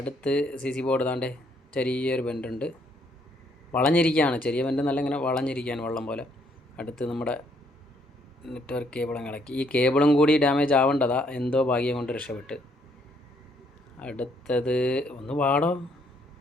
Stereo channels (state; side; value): normal; both; correlation 0.69